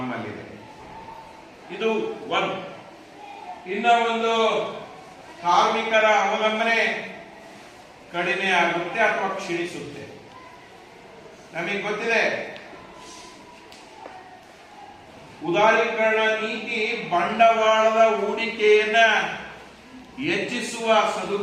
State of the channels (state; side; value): identical; both; correlation 1.00